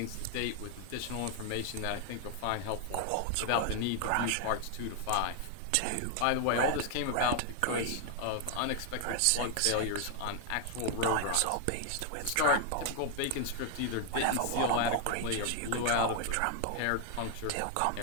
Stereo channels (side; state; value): both; different; correlation 0.00